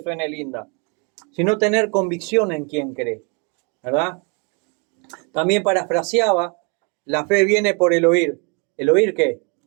suene linda, sino tener convicción en quien cree, ¿verdad? También parafraseaba: la fe viene por el oír. ¿El oír qué?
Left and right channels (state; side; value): quieter; left; 32.5 dB